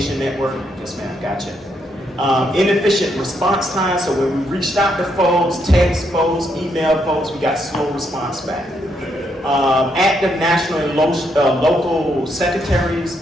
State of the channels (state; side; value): normal; both; correlation 0.77